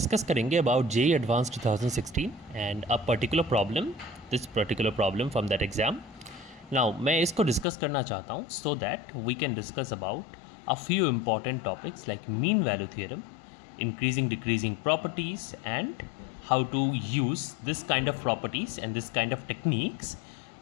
करेंगे about JEE advance 2016 and a particular problem, this particular problem from that exam. Now मैं इसको discuss करना चाहता हूँ so that we can discuss about a few important topics like mean value theorem, increasing decreasing properties, and how to use this kind of properties and this kind of techniques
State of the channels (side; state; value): right; drops out; at 7.7 s